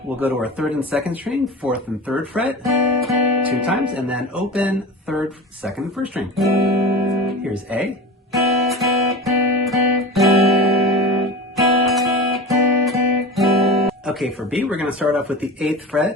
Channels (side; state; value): both; normal; correlation 0.31